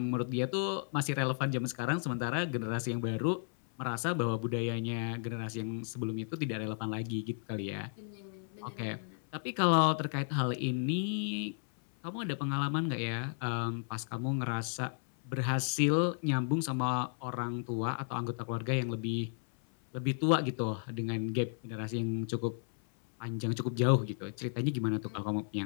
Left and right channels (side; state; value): right; silent; 55 dB below the other